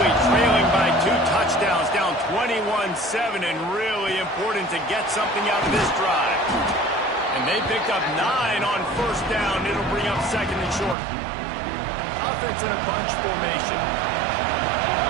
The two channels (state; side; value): drops out; left; at 11.0 s